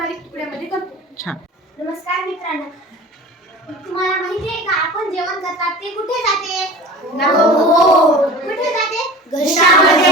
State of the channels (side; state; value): both; normal; correlation 0.38